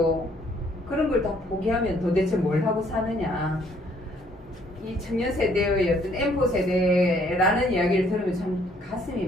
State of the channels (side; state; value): both; normal; correlation 0.64